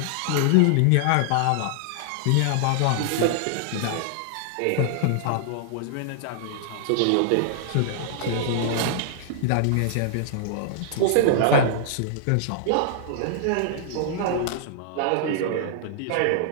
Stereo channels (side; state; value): both; different; correlation -0.01